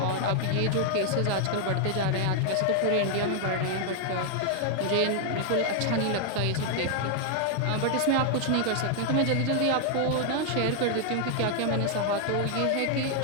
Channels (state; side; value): different; both; correlation 0.00